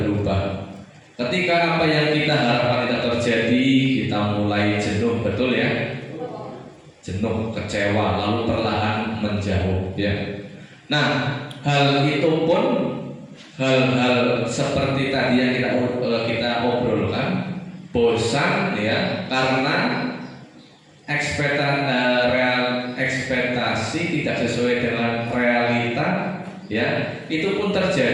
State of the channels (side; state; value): both; identical; correlation 1.00